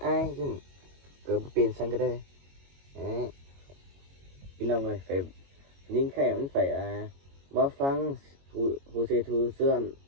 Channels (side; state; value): left; late; 22 ms